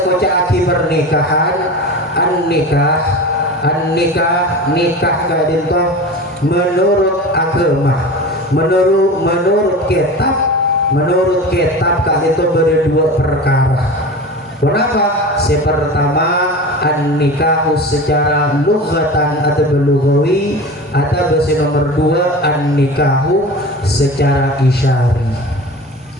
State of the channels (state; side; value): normal; both; correlation 0.32